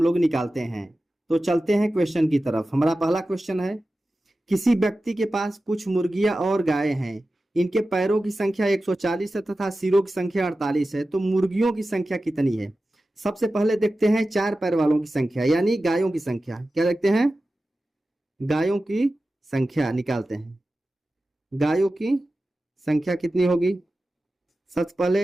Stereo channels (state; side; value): normal; both; correlation 0.94